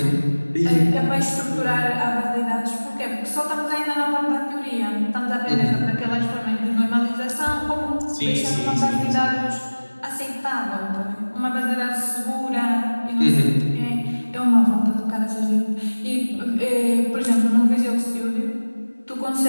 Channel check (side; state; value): both; inverted; correlation -1.00